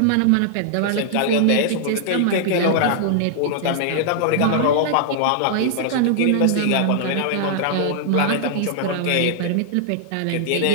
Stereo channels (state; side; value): different; both; correlation -0.01